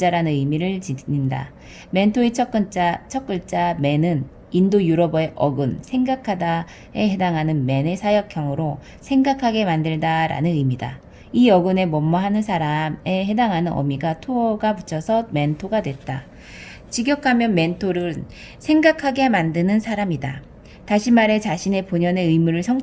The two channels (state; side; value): identical; both; correlation 1.00